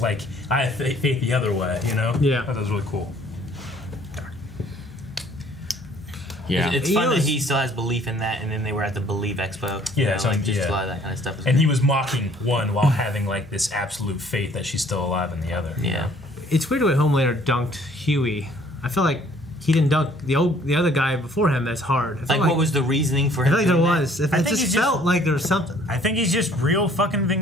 I have faith the other way. You know? Yeah. I thought that was really cool. Yeah. It's fun that he still has belief in that, and then they were at the Believe Expo. Yeah, a lot of that kind of stuff. And he was mocking one while having like this absolute faith that she's still alive in the other. Yeah. It's weird the way Homelander dunked Huey. I feel like he didn't dunk the other guy before him as hard. Like what was the reasoning for I him? feel like there was. It think just he's felt like there was something. I think he's just real fucking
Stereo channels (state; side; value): normal; both; correlation 0.58